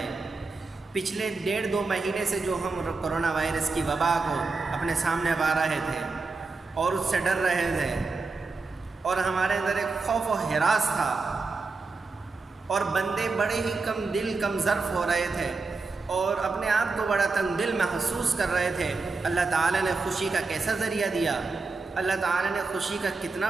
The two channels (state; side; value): quieter; left; 4.0 dB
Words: پچھلے 1.5-2 مہینے سے جو ہم کرونا وائرس کی وبا کو اپنے سامنے پا رہے تھے اور اس سے ڈر رہے تھے، اور ہمارے اندر ایک خوف و ہراس تھا، اور بندے بڑے ہی کم ظرف ہو رہے تھے اور اپنے آپ کو بڑا تنگ دل محسوس کر رہے تھے۔ اللہ تعالیٰ نے خوشی کا کیسا ذریعہ دیا، اللہ تعالیٰ نے خوشی کا کتنا